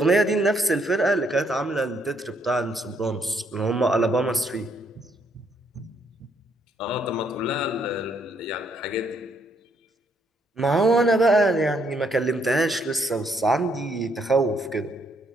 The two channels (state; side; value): normal; both; correlation 0.72